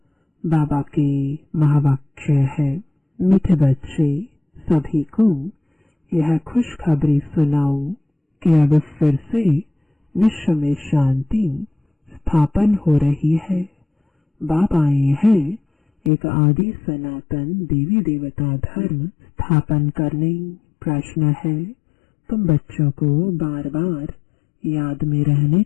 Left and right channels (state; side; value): drops out; right; at 16.1 s